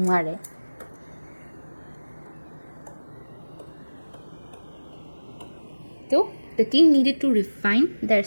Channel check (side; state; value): both; inverted; correlation -1.00